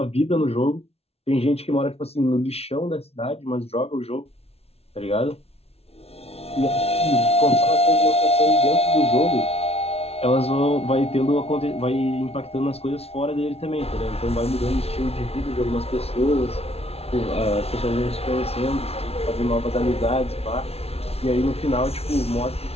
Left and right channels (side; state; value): right; late; 0.30 ms